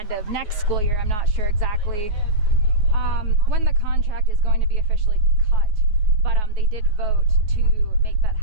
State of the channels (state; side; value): late; left; 9.4 ms